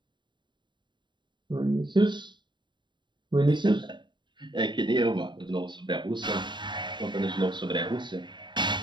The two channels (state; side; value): late; left; 0.22 ms